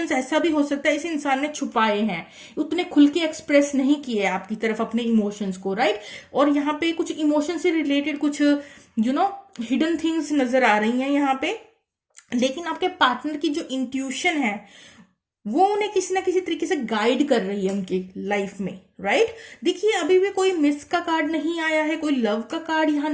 ऐसा भी हो सकता है इस इंसान ने छुपाए हैं, उतने खुल के एक्सप्रेस नहीं किए आपकी तरफ अपने इमोशंस को। राइट, और यहाँ पे कुछ इमोशन से रिलेटेड कुछ हिडन थिंग्स नजर आ रही हैं यहाँ पे। लेकिन आपके पार्टनर की जो इंट्यूशन है वो उन्हें किसी ना किसी तरीके से गाइड कर रही है उनकी लाइफ में, राइट। देखिए अभी भी कोई मिस का कार्ड नहीं आया है, कोई लव का कार्ड यहाँ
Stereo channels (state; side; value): identical; both; correlation 1.00